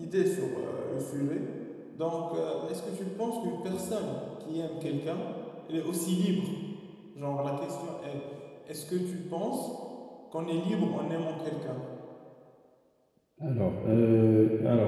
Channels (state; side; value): identical; both; correlation 1.00